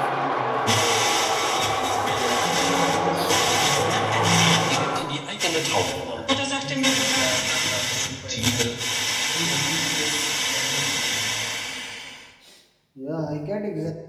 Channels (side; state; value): both; identical; correlation 1.00